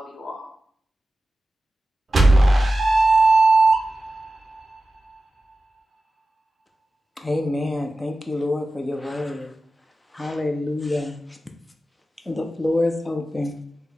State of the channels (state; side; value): normal; both; correlation 0.94